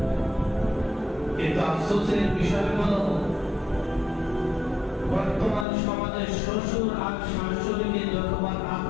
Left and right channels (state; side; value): drops out; right; at 5.7 s